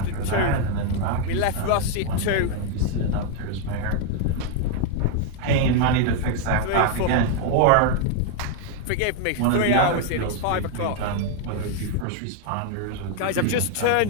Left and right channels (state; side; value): different; both; correlation 0.01